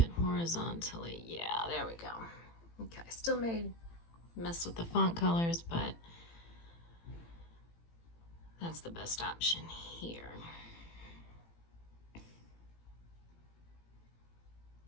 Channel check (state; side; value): late; right; 18 ms